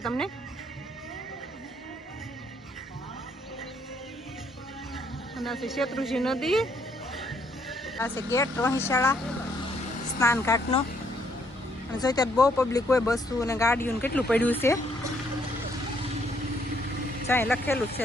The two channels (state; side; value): normal; both; correlation 0.69